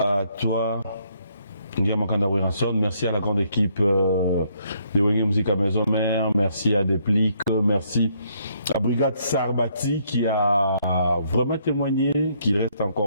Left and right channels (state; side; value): inverted; both; correlation -0.70